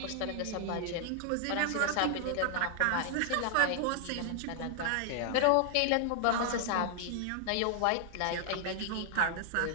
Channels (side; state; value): both; different; correlation 0.00